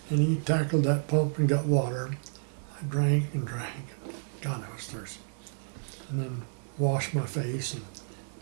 And he tackled that pump and got water. I drank and drank. God, I was thirsty. And then washed my face. And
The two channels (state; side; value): silent; left; digital silence